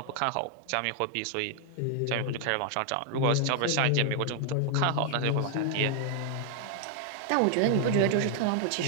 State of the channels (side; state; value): both; different; correlation 0.00